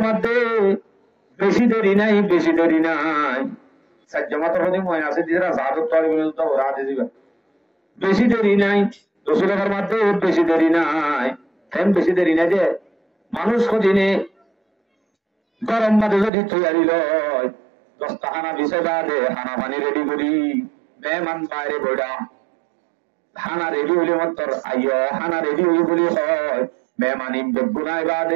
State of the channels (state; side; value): drops out; left; at 16.3 s